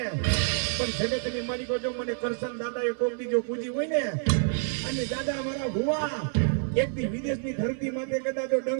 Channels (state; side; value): silent; left; 58 dB below the other